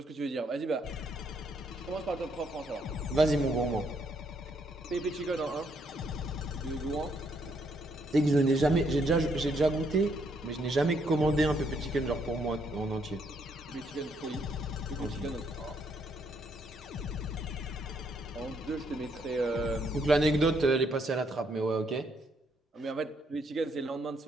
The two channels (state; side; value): normal; both; correlation 0.72